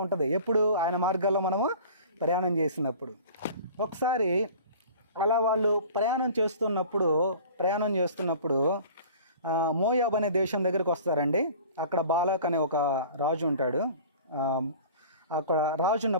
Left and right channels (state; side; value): inverted; both; correlation -0.43